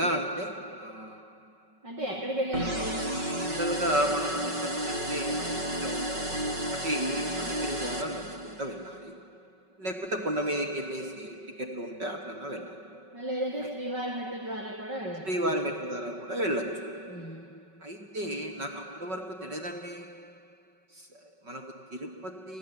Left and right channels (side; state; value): left; late; 5.3 ms